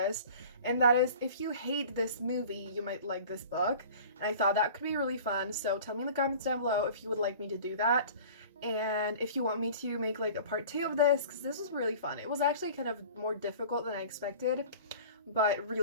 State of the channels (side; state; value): both; inverted; correlation -0.42